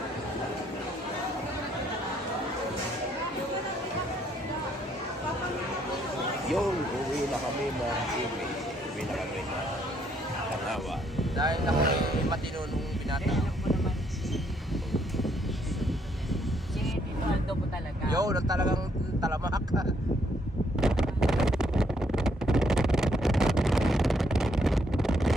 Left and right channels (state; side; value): normal; both; correlation 0.70